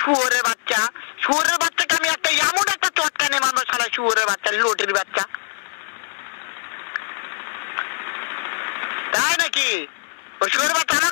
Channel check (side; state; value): right; silent; digital silence